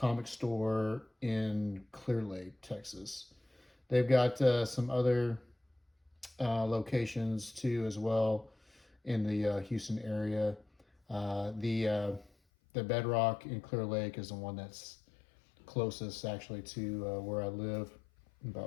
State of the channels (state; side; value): drops out; right; at 12.3 s